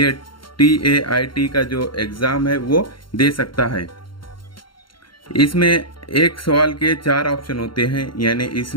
TAIT का जो एग्ज़ाम है वो दे सकता है। इसमें एक सवाल के 4 ऑप्शन होते हैं, यानी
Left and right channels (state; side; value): late; right; 0.73 ms